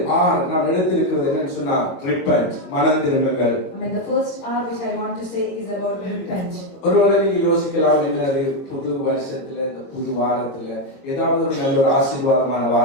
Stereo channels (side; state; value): right; late; 22 ms